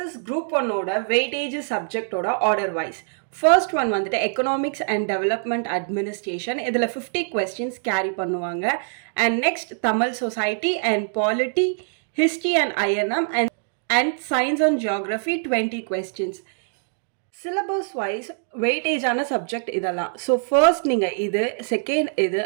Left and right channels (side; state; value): left; silent; digital silence